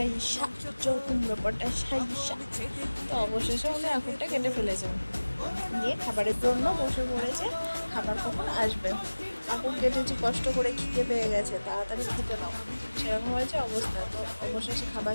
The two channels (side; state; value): both; inverted; correlation -1.00